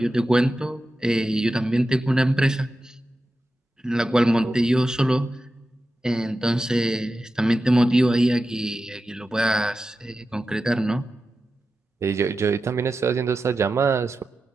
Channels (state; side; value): normal; both; correlation 0.92